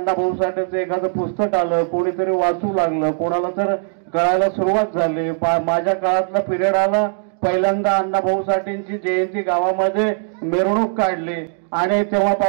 साठेंचं एखादं पुस्तक आलं, कोणीतरी वाचू लागलं, कोणाला तर कळायला सुरुवात झाली। माझ्या काळातला पिरियड आला, पहिल्यांदा अण्णाभाऊ साठेंची जयंती गावामध्ये मिरवणूक काढली आणि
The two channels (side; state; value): left; silent; 66 dB below the other